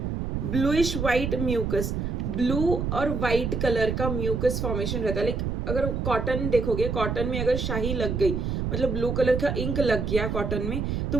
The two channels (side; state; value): right; noise; rumble, 1 dB below the sound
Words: bluish white mucus, blue और व्हाइट कलर का म्यूकस फॉर्मेशन रहता है, लाइक अगर कॉटन देखोगे, कॉटन में अगर शाही लग गई, मतलब ब्लू कलर का इंक लग गया कॉटन में, तो